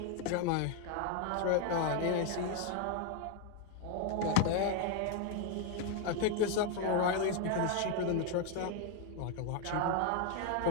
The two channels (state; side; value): different; both; correlation 0.00